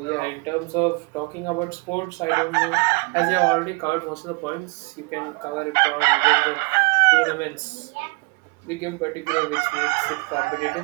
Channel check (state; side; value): quieter; left; 30.0 dB